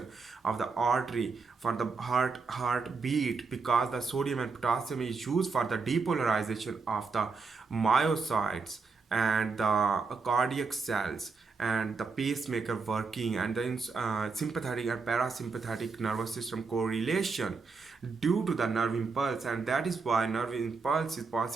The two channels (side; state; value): left; quieter; 4.6 dB